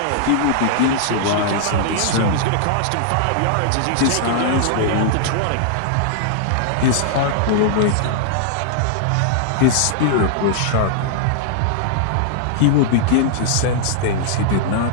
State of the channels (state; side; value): different; both; correlation -0.01